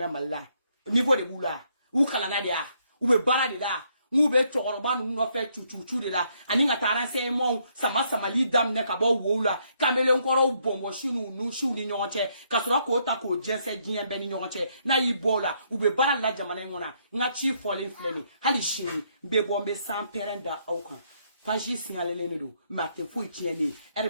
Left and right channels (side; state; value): both; inverted; correlation -0.72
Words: niveau de boula ou kala na dia ou be bala de la ou be tokoroba nu no fe chuchu de la ani nga taranse mo sama li dam ne ka bo wola kamele nkoro bombo shinu nu shu ni nyonche kasura ko ta ko jese gien be ni nyonche na ibola ou be bala la jamana ngona nga chi fole fleni hali shini be bombe sans perenda aukan Faji signalé ne do mate fo tieni